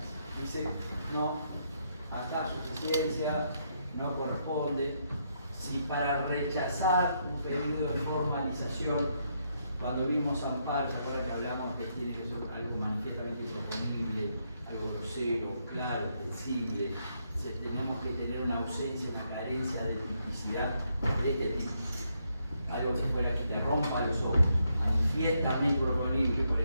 Dice, no, acá suficiencia, no corresponde. Si para rechazar un pedido de formalización, cuando vimos amparo, ¿se acuerdan que hablamos que tiene que ser algo manifiestamente improponible, algo grosero, claro, sensible? Tenemos que tener una ausencia, una carencia de tipicidad de este tipo. Algo que fuera que te rompa los ojos, manifiestamente improponible, por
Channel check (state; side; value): inverted; both; correlation -0.77